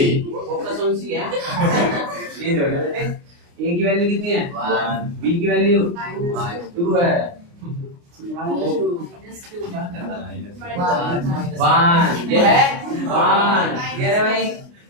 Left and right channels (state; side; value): late; left; 29 ms